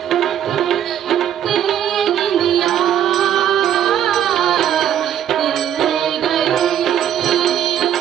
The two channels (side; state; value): left; quieter; 10.2 dB